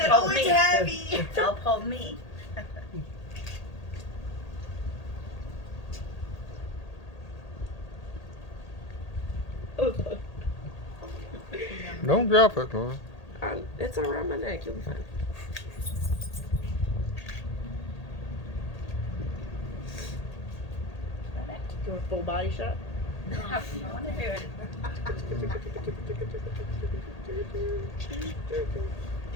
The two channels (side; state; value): right; late; 1.8 ms